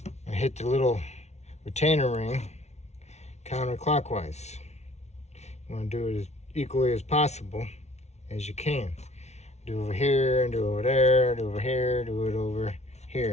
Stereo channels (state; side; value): late; right; 0.32 ms